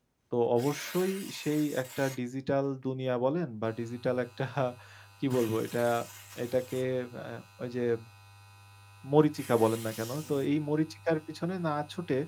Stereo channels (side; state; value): both; identical; correlation 1.00